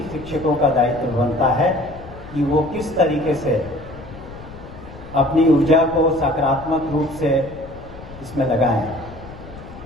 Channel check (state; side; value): noise; left; rumble, 16 dB below the sound